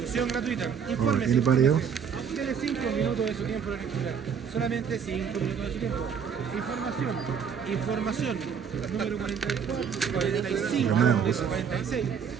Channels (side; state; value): left; quieter; 7.0 dB